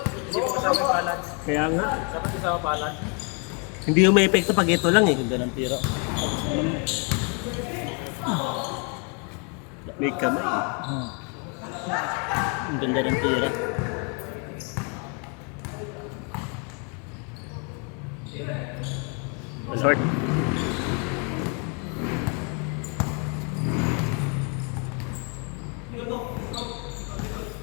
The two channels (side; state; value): right; quieter; 36.8 dB